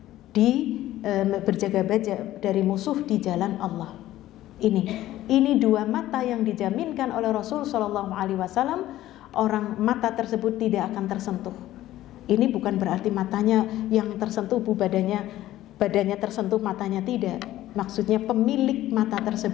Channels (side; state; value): right; quieter; 14.5 dB